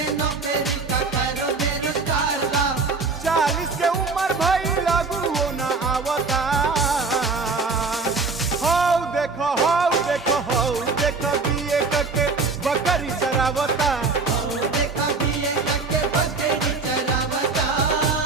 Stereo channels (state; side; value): quieter; left; 4.2 dB